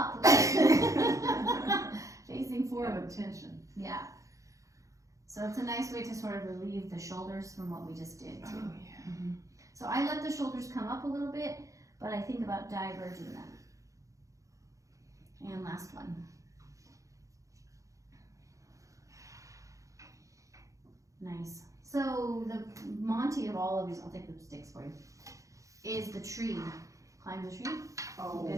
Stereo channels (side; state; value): left; late; 0.16 ms